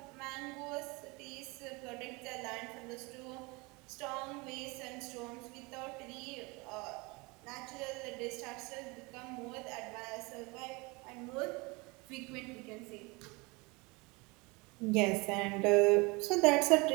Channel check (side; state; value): left; quieter; 26.4 dB